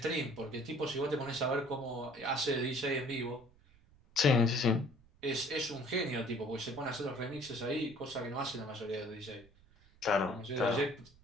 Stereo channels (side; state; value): right; noise; rumble, 27 dB below the sound